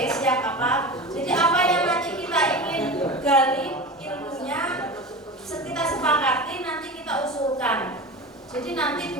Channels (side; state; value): both; normal; correlation 0.29